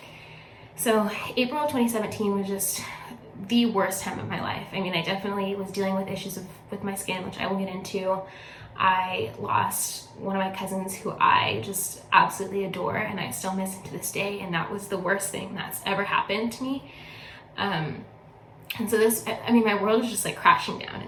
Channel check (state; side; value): identical; both; correlation 1.00